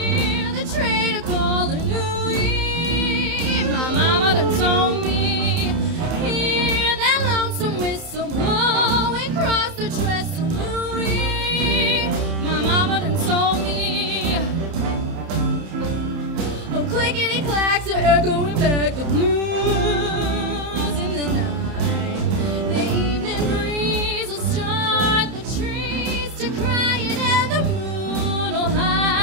the train are calling Louis. My mama done told me, hear that lonesome whistle blowing across the trestle Louis. My mama done told me,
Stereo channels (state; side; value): late; left; 31 ms